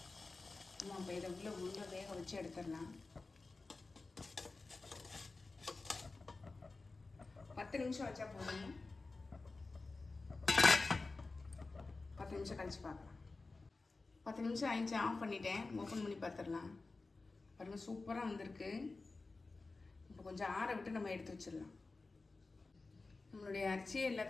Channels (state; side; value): quieter; right; 3.6 dB